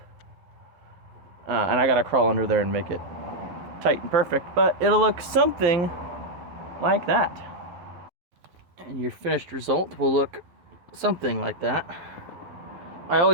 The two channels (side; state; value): left; late; 11 ms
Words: And I gotta crawl under there and make it tight and perfect, but it'll look something like that. And your finished result will look something like that. I